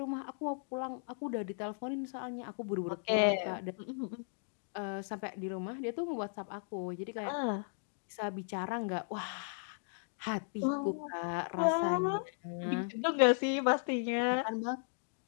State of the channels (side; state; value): right; silent; digital silence